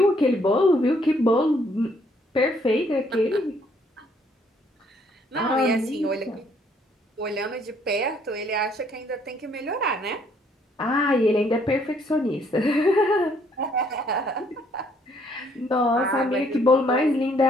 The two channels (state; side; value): normal; both; correlation 0.66